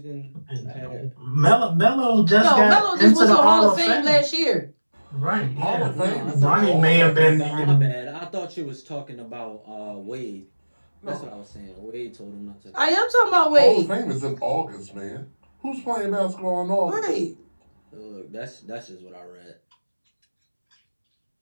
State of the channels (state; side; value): inverted; both; correlation -1.00